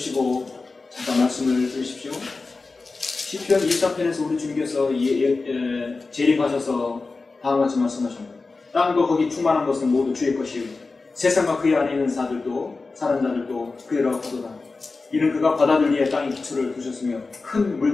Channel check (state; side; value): quieter; right; 3.9 dB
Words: 잠깐 말씀을 들으십시오. 시편 24편에서 우리 주님께서 재림하셔서 다음과 같이 말씀하십니다. 땅과 거기 충만한 것은 모두 주의 것이요 세상과 그의 안에 있는 사람들도 그의라고 하도다. 이는 그가 바다들 위에 땅에 기초를 두셨으며 큰